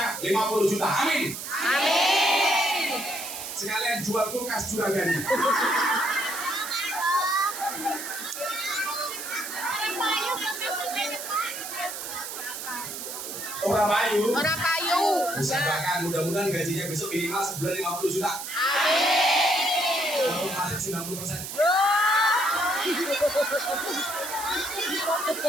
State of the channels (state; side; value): noise; right; hiss, 7 dB below the sound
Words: 50 juta. Amin. Amin. Sekalian jual kulkas juragannya. Orang payu. Orang payu. Usahakan mudah-mudahan gajinya besok minimal sebulan 50 juta. Amin. Kalau masuk 90%.